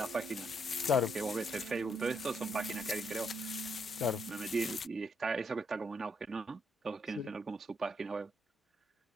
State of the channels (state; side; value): normal; both; correlation 0.75